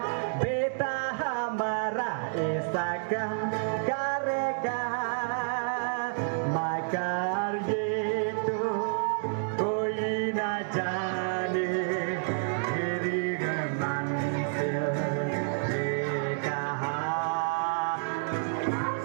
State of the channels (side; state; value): left; silent; digital silence